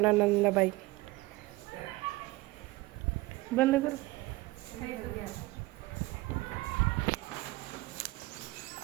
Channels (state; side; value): quieter; left; 20.1 dB